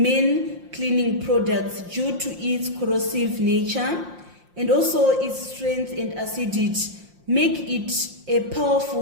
many cleaning products due to its corrosive nature and also its strength and acidity make it a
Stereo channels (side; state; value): left; late; 5.7 ms